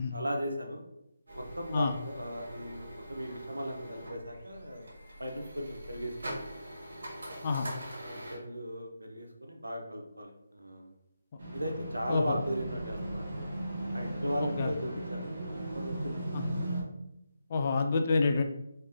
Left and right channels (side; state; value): both; inverted; correlation -0.86